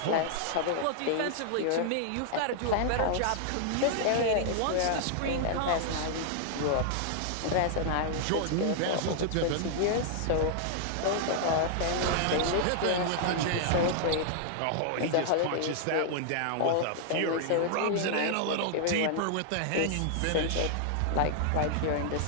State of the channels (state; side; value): different; both; correlation -0.01